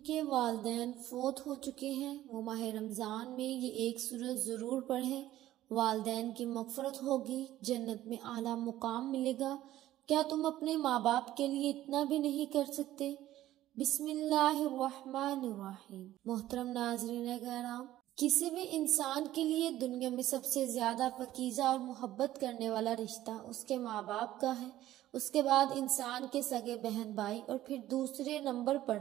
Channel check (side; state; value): left; quieter; 14.1 dB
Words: والدین فوت ہو چکے ہیں وہ ماہ رمضان میں یہ ایک سورت ضرور پڑھیں، والدین کی مغفرت ہوگی، جنت میں اعلیٰ مقام ملے گا۔ کیا تم اپنے ماں باپ کے لیے اتنا بھی نہیں کر سکتے؟ بسم اللہ الرحمن الرحیم۔ محترم ناظرین کرام، کسی بھی انسان کے لیے دنیا میں سب سے زیادہ پاکیزہ اور محبت کرنے والا رشتہ اس کے ماں باپ کا ہے۔ اس کے بعد انسان کے سگے بہن بھائی اور پھر دوسرے نمبر پر